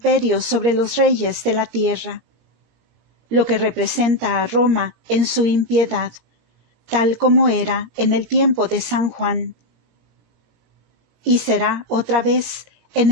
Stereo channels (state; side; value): late; left; 17 ms